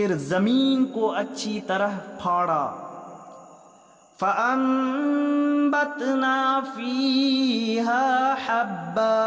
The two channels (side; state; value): both; identical; correlation 1.00